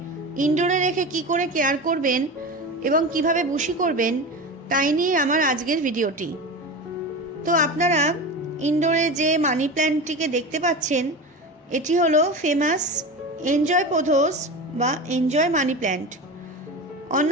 ইনডোরে রেখে কি করে কেয়ার করবেন এবং কিভাবে বুশি করবেন তাই নিয়ে আমার আজকের ভিডিওটি। তো আপনারা ইনডোরে যে মানি প্ল্যান্টটিকে দেখতে পাচ্ছেন এটি হলো ফেমাস এনজয় পোথোস বা এনজয় মানি প্ল্যান্ট।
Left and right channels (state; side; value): normal; both; correlation 0.27